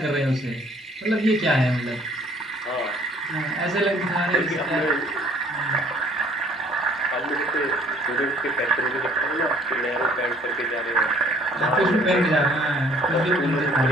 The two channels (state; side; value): normal; both; correlation 0.57